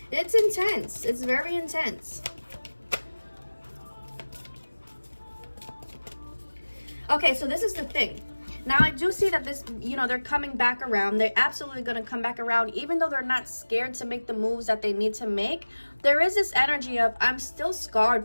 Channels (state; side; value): inverted; both; correlation -1.00